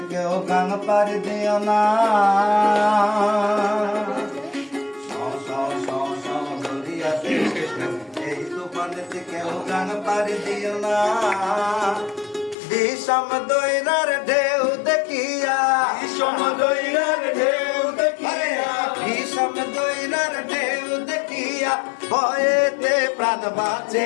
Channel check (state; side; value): drops out; right; at 12.6 s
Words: কেউ গান পাড়ি দিও না। সাও সাও সাও সাও দরিয়াতে ওঠে ঢেউ, এই তুফানেতে কেউ গান পাড়ি দিও না। বিষম দৈরার ঢেউ দেখিয়া, বিষম দৈরার ঢেউ দেখিয়া, বিষম দৈরার ঢেউ দেখিয়া ভয়েতে প্রাণ